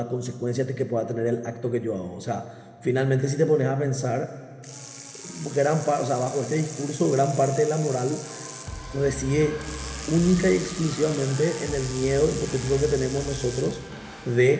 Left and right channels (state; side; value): identical; both; correlation 1.00